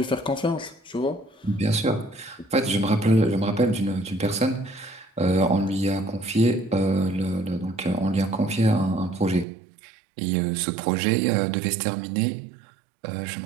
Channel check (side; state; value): left; drops out; at 9.5 s